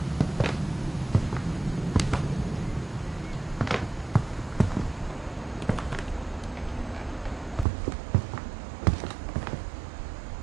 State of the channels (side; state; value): left; drops out; at 7.7 s